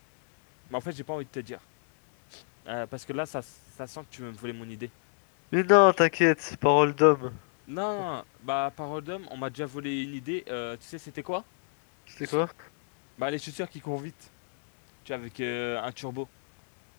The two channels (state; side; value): silent; right; digital silence